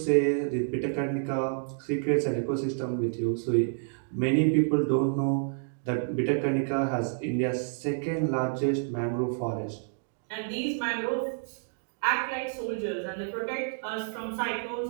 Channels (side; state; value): left; silent; digital silence